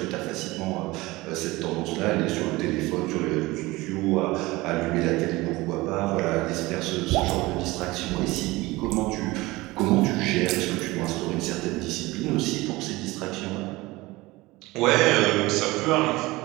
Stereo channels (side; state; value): left; quieter; 20.6 dB